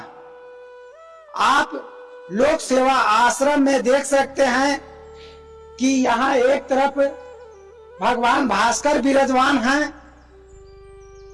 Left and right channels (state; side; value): identical; both; correlation 1.00